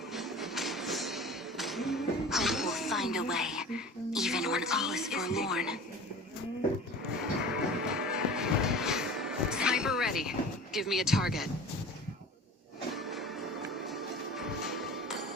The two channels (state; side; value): normal; both; correlation 0.39